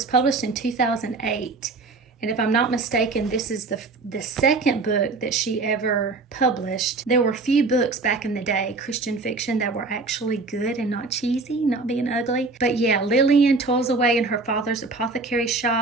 published in 2008. And if I'm not mistaken, this is the second book that she ever published. There were few books back in the day, Christian fiction, that were actually good and not cheesy, not being ugly. But yeah, Lillian toils away in her father's apothecary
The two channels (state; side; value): quieter; left; 3.7 dB